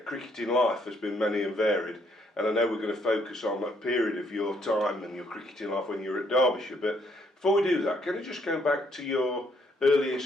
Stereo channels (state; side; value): normal; both; correlation 0.69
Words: cricketing life has been many and varied, and I know we're going to focus on a period of your time and your cricketing life when you were at Derbyshire, but before we do that, can I just go back to your